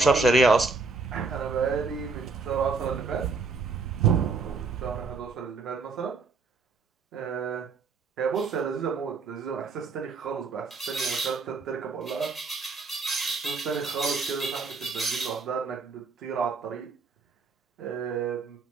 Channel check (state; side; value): quieter; left; 4.4 dB